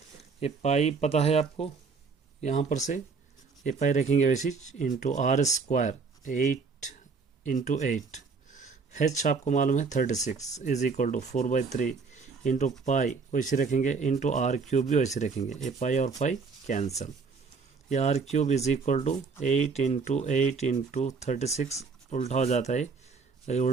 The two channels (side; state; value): left; quieter; 4.9 dB